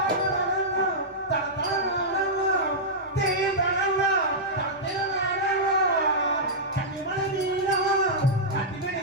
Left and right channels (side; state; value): both; normal; correlation -0.10